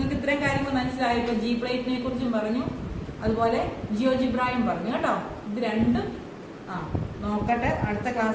ഇത്രയും കാര്യങ്ങൾ മനസ്സിലായി. ഇപ്പോൾ ജി പ്ലേറ്റിനെ കുറിച്ചും പറഞ്ഞു, അതുപോലെ ജിയോജിബ്രായും പറഞ്ഞു കേട്ടോ. ഇത് രണ്ടും നോക്കട്ടെ, അടുത്ത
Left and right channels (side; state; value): both; identical; correlation 1.00